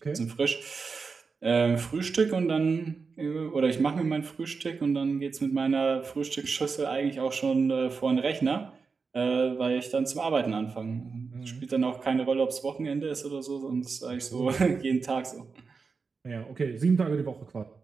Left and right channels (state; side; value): quieter; left; 4.9 dB